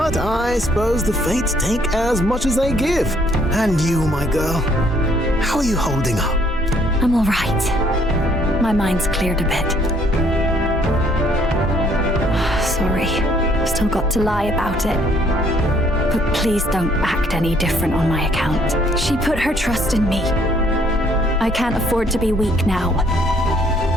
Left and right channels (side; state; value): both; normal; correlation 0.64